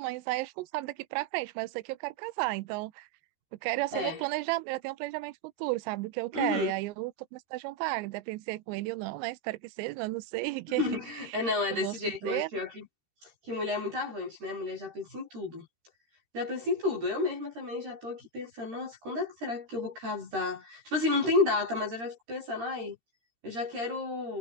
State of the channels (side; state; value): left; late; 13 ms